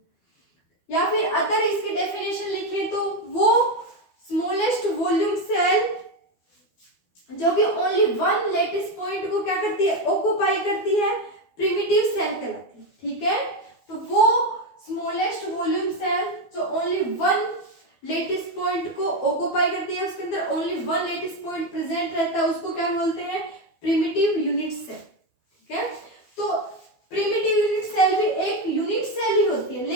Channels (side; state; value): right; late; 12 ms